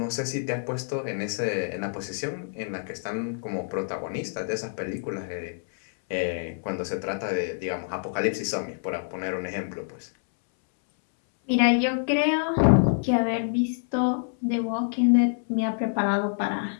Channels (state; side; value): silent; right; 60 dB below the other